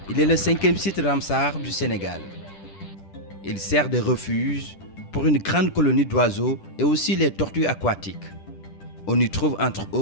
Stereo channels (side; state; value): right; late; 10 ms